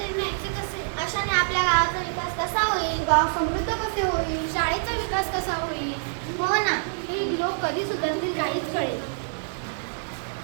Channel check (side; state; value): left; silent; digital silence